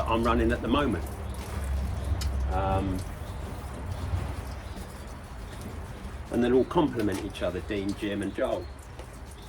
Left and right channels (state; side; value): identical; both; correlation 1.00